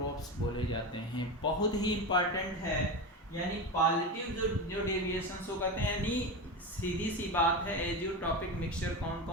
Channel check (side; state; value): both; normal; correlation 0.21